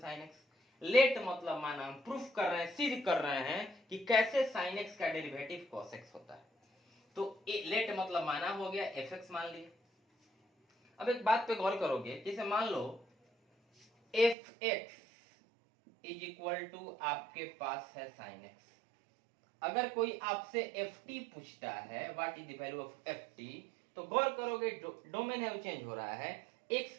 x। Let मतलब माना हम प्रूफ कर रहे हैं, सिद्ध कर रहे हैं कि कैसे sin x का डेरिवेटिव cos x होता है। तो लेट मतलब माना हो गया, fx मान लिए। अब एक बात पे गौर करोगे, जैसे मान लो fx इज इक्वल टू आपके पास है sin x। अगर कोई आपसे ft पूछता है what is the value of ft, तो गौर करोगे डोमेन है वो चेंज हो रहा है, x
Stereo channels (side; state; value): left; drops out; at 14.4 s